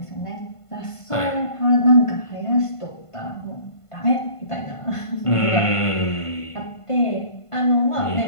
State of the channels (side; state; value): right; late; 1.5 ms